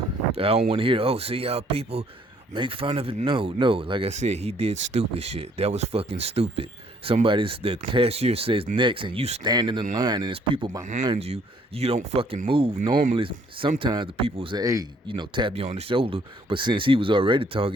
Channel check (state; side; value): normal; both; correlation 0.63